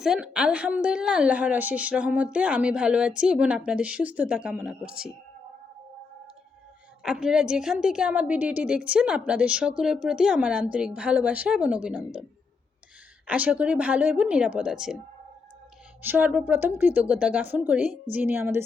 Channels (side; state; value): right; quieter; 4.6 dB